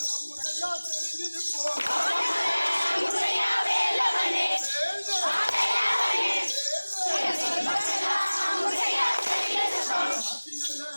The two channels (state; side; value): inverted; both; correlation -1.00